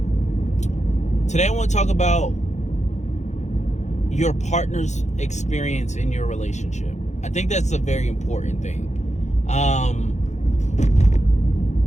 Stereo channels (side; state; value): right; late; 0.34 ms